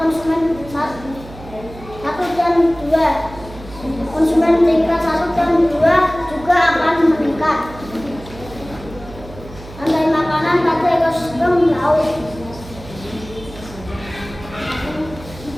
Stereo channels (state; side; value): noise; right; hum, 16 dB below the sound